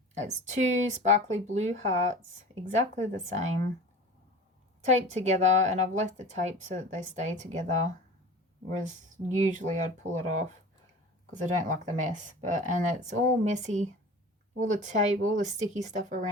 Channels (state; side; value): normal; both; correlation 0.38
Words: it's two sparkly blue hearts, exactly the same, taped together, and I've left the tape so that they stay together, whereas usually I'd pull it off because I don't like the mess. And it's all messy. All the tape, all the sticky stuff